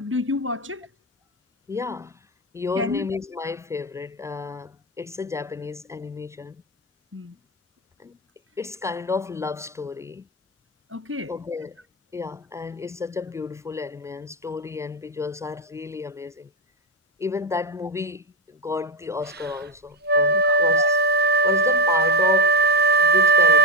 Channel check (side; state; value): both; normal; correlation 0.14